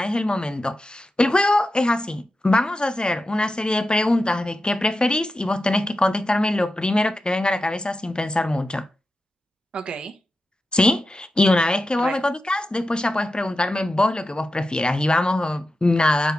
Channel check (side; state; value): both; normal; correlation 0.91